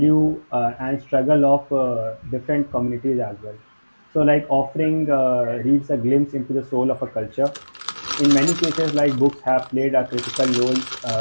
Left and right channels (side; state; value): both; inverted; correlation -1.00